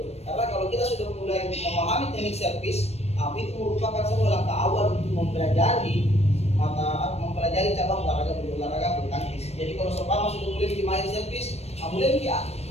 Karena kalau kita sudah mulai memahami teknik servis, itu merupakan sebuah langkah awal untuk mempelajari cabang olahraga bulu tangkis. Jadi kalau seumpama sudah mulai main servis, mulai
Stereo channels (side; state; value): right; late; 0.31 ms